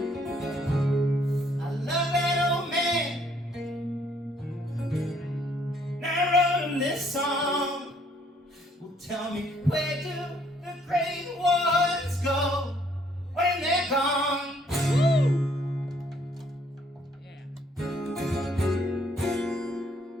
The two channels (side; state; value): both; normal; correlation 0.65